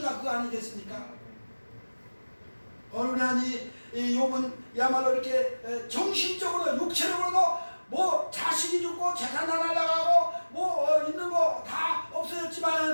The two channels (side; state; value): both; inverted; correlation -1.00